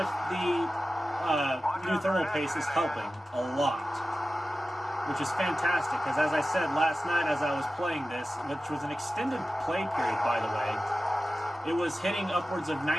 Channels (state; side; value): normal; both; correlation 0.94